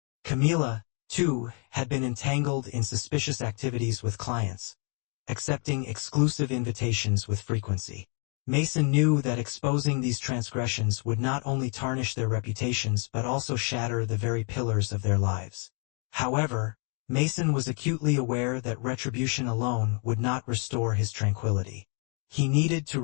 Camila, too, had been entangled in suspicious activities with clients, accepting exclusive invitations with frequency. Mason knew that exposing these transgressions would not only tarnish their reputations but also shatter the very pillars of their lives. However, Mason was acutely aware that retribution alone would not restore his tranquility. He needed to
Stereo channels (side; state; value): right; quieter; 39.0 dB